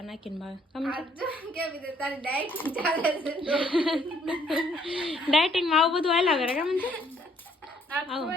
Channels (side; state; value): both; normal; correlation 0.65